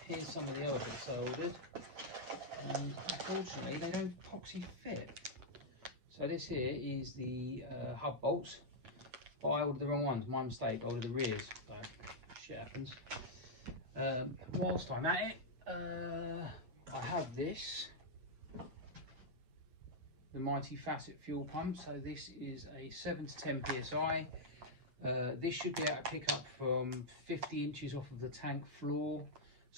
here's some of the other bits I ordered, and unfortunately they don't epoxy fit. So this here is the hub bolts, but I ordered the wrong ones, my mistake, I ordered the rears, so shit happens. Whilst I'm at it, I have this, the mighty Facet fuel pump. So this is a 7 to 10 psi. This should be able to pick up from 50 inches off of the tank floor.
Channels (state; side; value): late; left; 8.3 ms